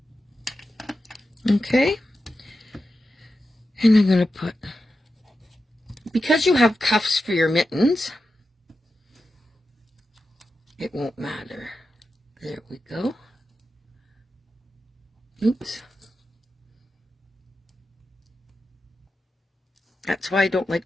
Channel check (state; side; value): normal; both; correlation 0.90